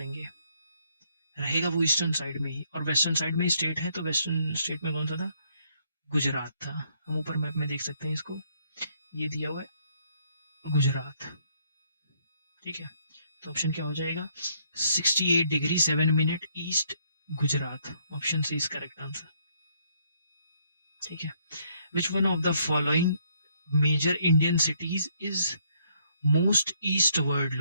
रहेगा वो ईस्टर्न साइड में ही। और वेस्टर्न साइड में स्टेट है, तो वेस्टर्न स्टेट में कौन सा था, गुजरात था। हम ऊपर मैप में देख सकते हैं इसको, ये दिया हुआ है गुजरात। ठीक है, तो ऑप्शन क्या हो जाएगा, 68 degree 7 minute east Gujarat, option C is correct answer. ठीक है, which one of the following major Indian cities is most eastward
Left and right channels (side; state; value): both; inverted; correlation -0.69